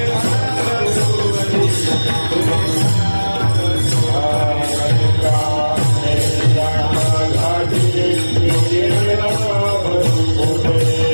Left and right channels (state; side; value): inverted; both; correlation -1.00